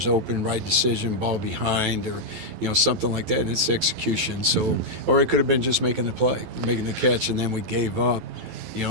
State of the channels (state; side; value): late; left; 11 ms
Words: open, right decision, ball behind, or something like that, and it's execution. So, or it could have been just making the play, making the catch, and then we gave up